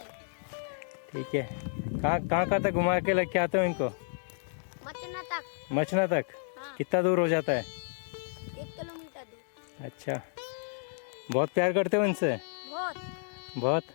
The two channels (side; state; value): right; silent; digital silence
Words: ठीक है। कहाँ तक घुमा के लेके आते हो इनको? मचना तक। मचना तक? हाँ। कितना दूर हो जाता है? 1 किलोमीटर दूर। अच्छा, बहुत प्यार करते हो इनसे? बहुत।